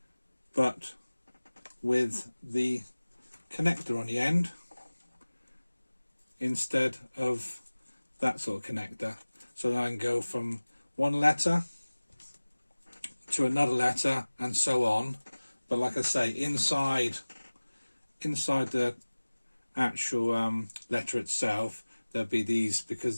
but with the connector on the end instead of that sort of connector. So then I can go from one letter to another letter and so on. But like I say, inside the actual letter itself, there'll be these, because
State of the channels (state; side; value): inverted; both; correlation -1.00